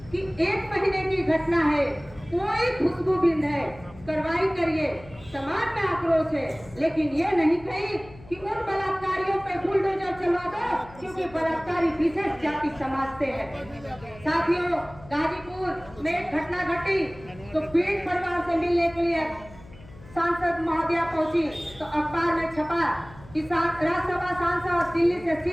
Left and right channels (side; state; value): left; noise; hum, 20 dB below the sound